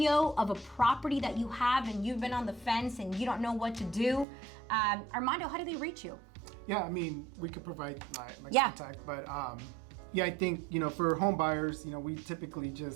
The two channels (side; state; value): left; drops out; at 4.2 s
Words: of a property that you have and you've been on the fence and you don't know what to do, Armando, how do they reach you? Yeah, we could provide my contact, but I think, for home buyers, we typically